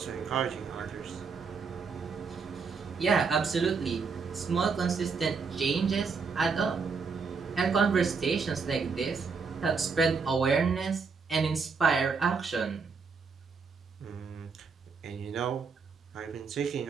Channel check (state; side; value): quieter; left; 5.1 dB